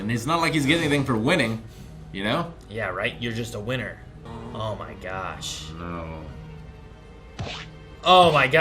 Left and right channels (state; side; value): identical; both; correlation 1.00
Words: it's not like he's getting anything for winning, you know? Yeah, right? You're just a winner. Oh my gosh. No. Oh my